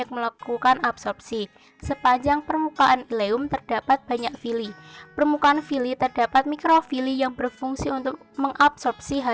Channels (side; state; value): both; identical; correlation 1.00